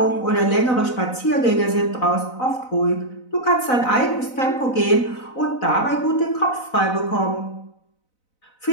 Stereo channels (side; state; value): right; late; 4.0 ms